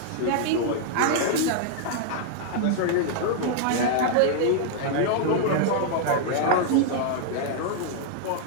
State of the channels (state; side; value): different; both; correlation -0.01